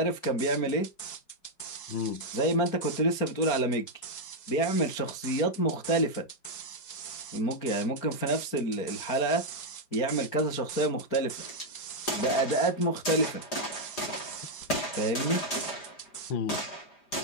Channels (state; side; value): late; right; 5.0 ms